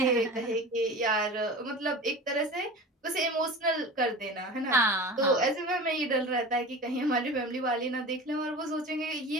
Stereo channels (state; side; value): normal; both; correlation 0.34